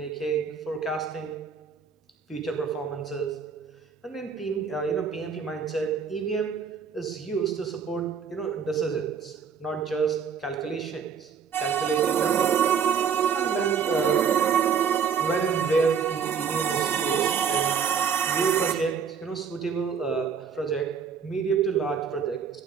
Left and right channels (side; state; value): left; quieter; 6.6 dB